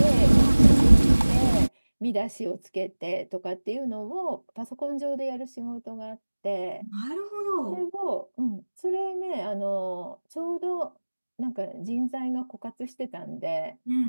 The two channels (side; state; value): both; inverted; correlation -1.00